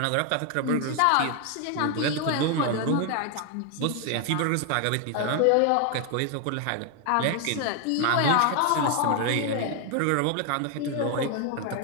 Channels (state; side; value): different; both; correlation 0.01